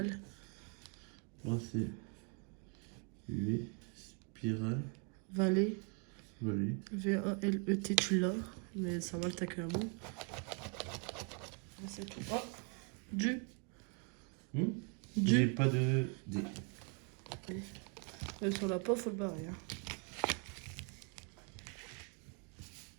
Là c'est U, spirale, Vallée. vallée. V-A-L-E-T, tu l'as. Mais ça va, t'as que un mot. C'est tout. Oh. Du. J'ai Du. pas de D. Sur la peau, faut le barrer. Hein.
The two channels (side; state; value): left; quieter; 37.9 dB